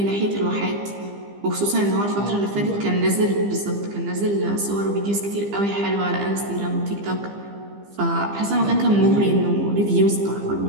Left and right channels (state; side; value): late; left; 15 ms